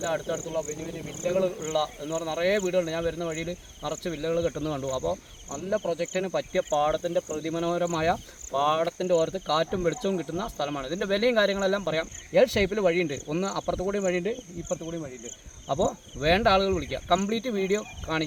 അടുത്തടുത്തുള്ള വലിയ വലിയ വില്ലകൾ ഉള്ള എന്ന് പറഞ്ഞാൽ നിറയെ വീടുകളുണ്ട്. ഞാൻ വരുന്ന വഴിയിൽ നിറച്ച് വില്ലകൾ കെട്ടുന്നത് കണ്ടു. അപ്പോൾ നല്ല പ്രൊജക്റ്റിന് പറ്റിയ പാടത്തിൻ്റെ പ്രതിമനോഹരമായ പാടത്തിൻ്റെ ഓരത്ത് കാറ്റും വെളിച്ചവും കിട്ടുന്ന സ്ഥലമാണ്. ഇതിൻ്റെ വിലയും കാര്യങ്ങളെല്ലാം പറയാം. എൽ ഷേപ്പിൽ വഴിയുണ്ട്. ഒന്ന് അപ്പുറത്ത് കൂടിയും വഴിയുണ്ട്, ഇപ്പുറത്ത് കൂടിയും വഴിയുണ്ട്. അപ്പോൾ വേണ്ട ആളുകൾ വിളിക്കുക. കംപ്ലീറ്റ് വീഡിയോ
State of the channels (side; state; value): both; identical; correlation 1.00